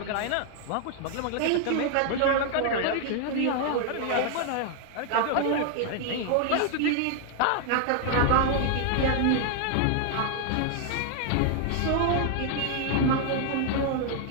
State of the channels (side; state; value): both; different; correlation 0.00